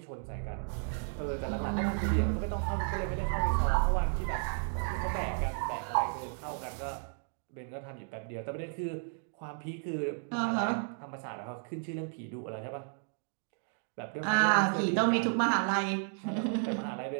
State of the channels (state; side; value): silent; left; 56 dB below the other